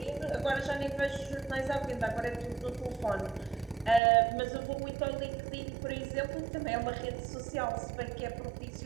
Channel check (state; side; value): drops out; left; at 4.0 s